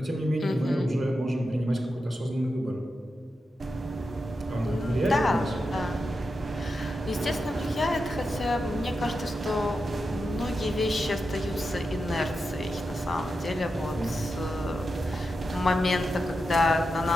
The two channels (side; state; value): both; normal; correlation 0.89